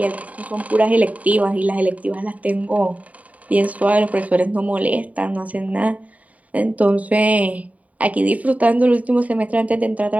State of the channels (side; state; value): left; late; 0.070 ms